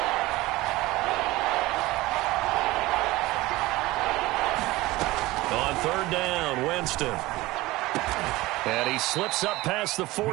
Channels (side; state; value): left; quieter; 19.4 dB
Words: On 3rd down, Winston. And he slips up past the